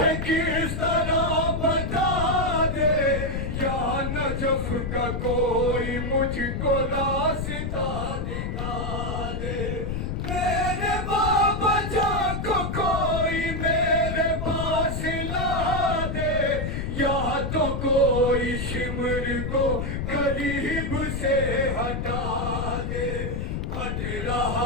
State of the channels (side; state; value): left; noise; rumble, 3 dB below the sound